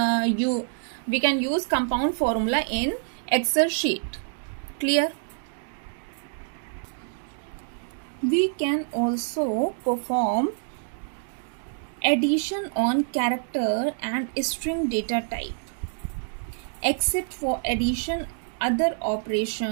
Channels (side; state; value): left; silent; digital silence